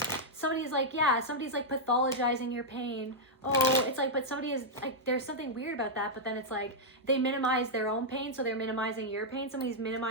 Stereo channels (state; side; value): normal; both; correlation -0.05